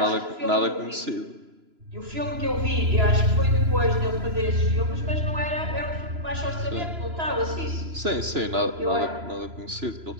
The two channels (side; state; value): left; late; 3.0 ms